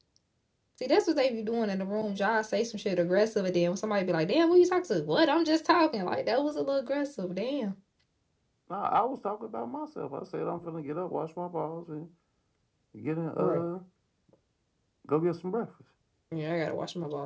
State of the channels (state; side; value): identical; both; correlation 1.00